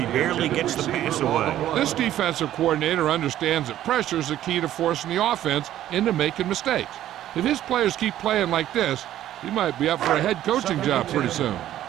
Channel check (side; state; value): left; quieter; 12.6 dB